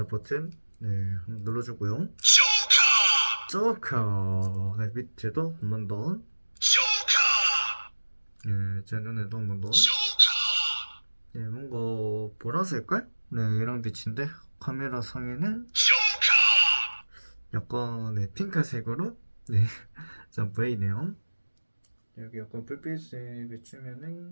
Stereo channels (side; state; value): both; inverted; correlation -1.00